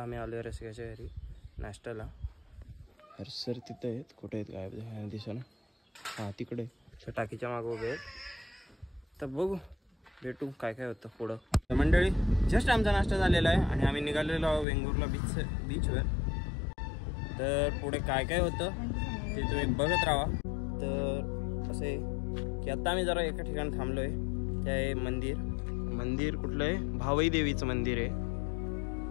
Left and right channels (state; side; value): drops out; right; at 14.7 s